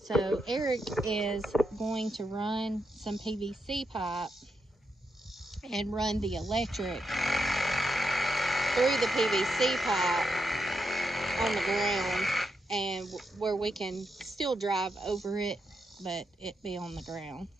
So Eric is going to run some PVC pipe and run the electric through the PVC pipe on the ground, and where we can still drive over it, but it be on the ground.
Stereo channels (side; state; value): both; normal; correlation 0.84